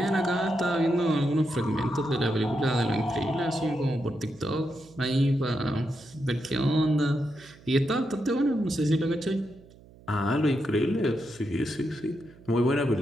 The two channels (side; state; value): right; noise; hum, 24 dB below the sound